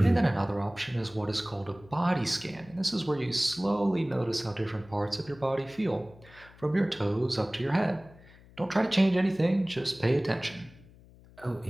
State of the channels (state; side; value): noise; left; hum, 24 dB below the sound